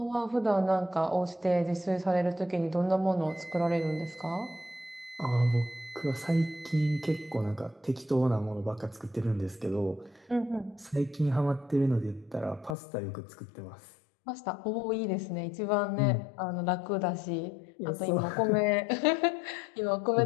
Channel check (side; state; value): right; drops out; at 12.8 s